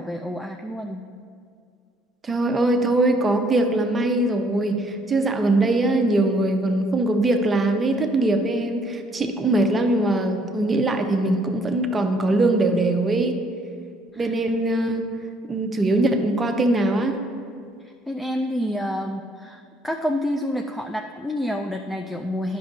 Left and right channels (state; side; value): normal; both; correlation 0.66